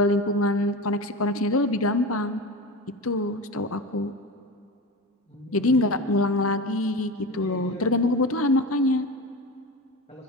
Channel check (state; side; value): normal; both; correlation 0.27